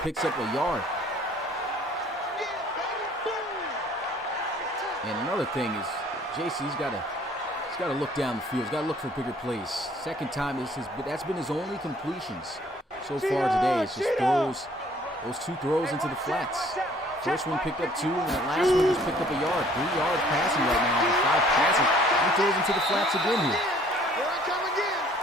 picks up a yard. And another thing is, JC's got to look down the field. He's got to look for bigger plays. Second time, that's been his only completions so far today. It's just those 2 throws into the flats. First one picked up 2, and that last one just picked up a yard. 3 yards passing right now with 5 passes. He throws into the flats again here.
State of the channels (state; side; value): normal; both; correlation 0.57